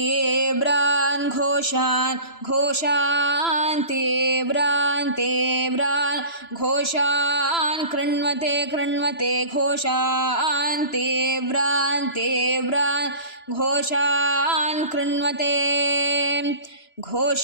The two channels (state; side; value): late; right; 3.0 ms